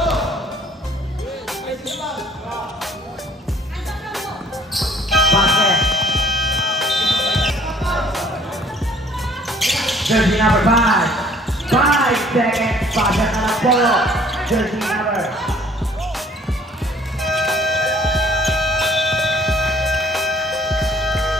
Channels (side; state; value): both; normal; correlation 0.58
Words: Basket. Jersey number 5. 5 seconds. Basket na lang po. Jersey number.